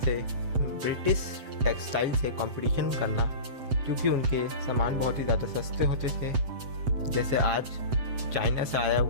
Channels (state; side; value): late; left; 7.8 ms